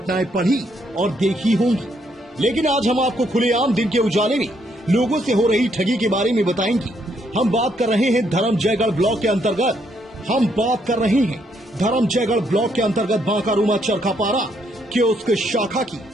पढ़ी और देखी होंगी, लेकिन आज हम आपको खुलेआम दिन के उजाले में लोगों से हो रही ठगी के बारे में बताएंगे। हम बात कर रहे हैं धर्मजयगढ़ ब्लॉक के अंतर्गत बांकारुमा चरखापारा कियोस्क शाखा की।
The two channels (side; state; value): both; normal; correlation 0.73